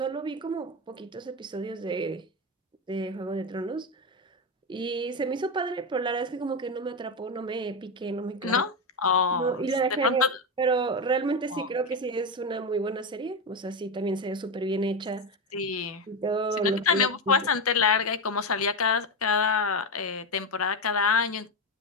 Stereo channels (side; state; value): both; normal; correlation 0.13